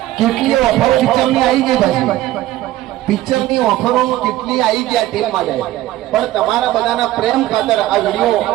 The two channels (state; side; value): quieter; left; 15.1 dB